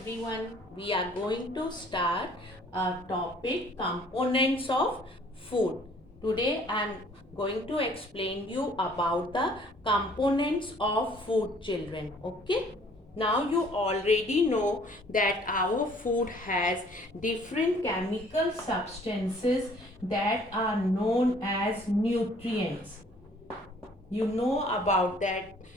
We are going to start a topic components of food. Today I am going to explain you about the components of food children. Okay. Now you already know that our food has different chemical substances that are known as nutrients. You know about that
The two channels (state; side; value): normal; both; correlation 0.57